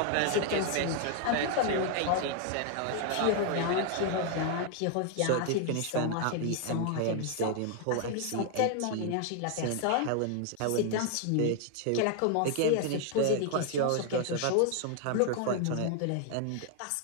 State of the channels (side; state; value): both; different; correlation 0.00